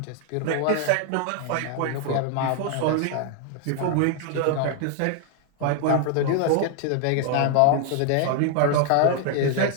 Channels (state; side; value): different; both; correlation 0.00